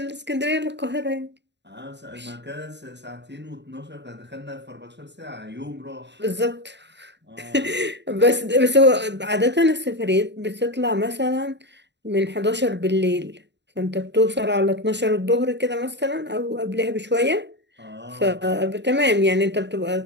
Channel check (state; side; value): late; left; 0.51 ms